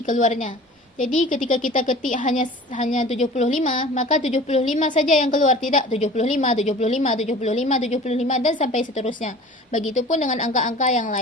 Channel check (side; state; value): both; normal; correlation 0.42